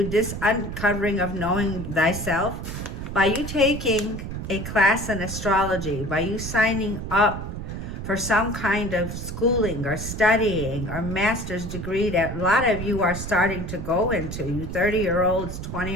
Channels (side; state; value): right; noise; rumble, 7 dB below the sound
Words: this uncovering of knowing thyself, by you taking a class in astrology, by you signing up for some kind of schooling or studying or master's degree that a lot of you are starting to go into, you 30-year-olds,